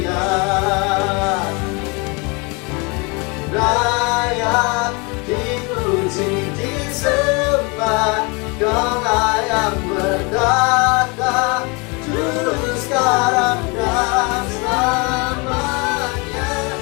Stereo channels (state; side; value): quieter; right; 29.9 dB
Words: Layak dipuji disembah, Kau layak berkata dulu, sekarang dan selamanya,